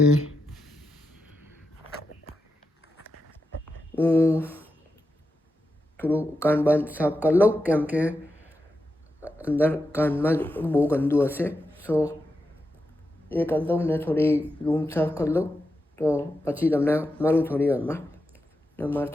હું થોડું કાન બાન સાફ કરી લઉં કેમ કે અંદર કાનમાં જ બહુ ગંદુ હશે સો એ કરી દઉં ને થોડી રૂમ સાફ કરી લઉં તો પછી તમને મળું થોડી વારમાં ને મારે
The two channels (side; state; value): both; normal; correlation 0.88